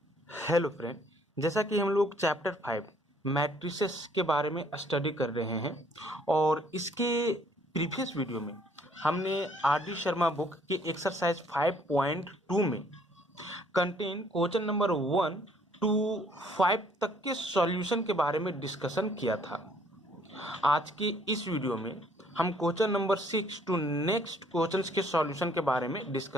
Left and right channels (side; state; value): both; normal; correlation 0.62